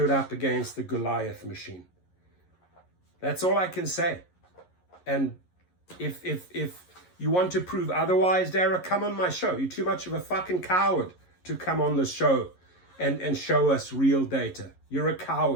up against the Goliath machine. That's all I can say. And if you want to prove otherwise, Dara, come on my show. You're too much of a fucking coward to come on the show and show us real data. You're a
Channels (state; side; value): late; right; 11 ms